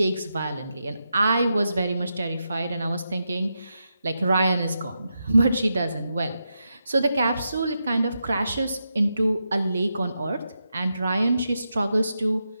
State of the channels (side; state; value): both; inverted; correlation -0.86